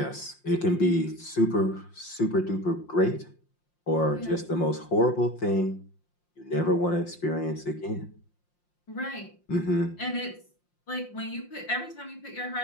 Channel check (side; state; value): right; late; 5.7 ms